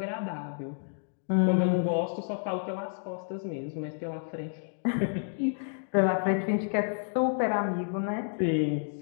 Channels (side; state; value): right; silent; digital silence